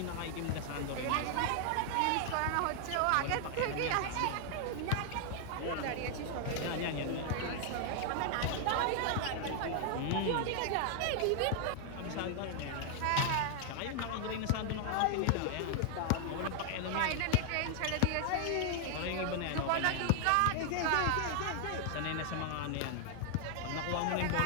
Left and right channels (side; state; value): both; different; correlation 0.00